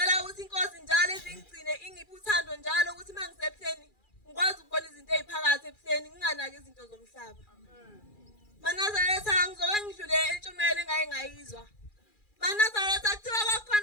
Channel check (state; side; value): late; right; 2.4 ms